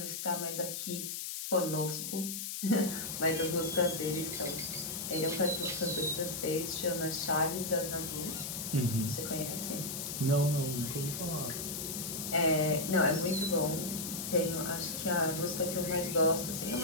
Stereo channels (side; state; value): left; noise; hiss, 5 dB below the sound